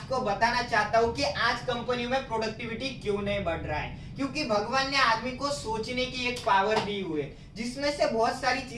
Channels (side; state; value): both; identical; correlation 1.00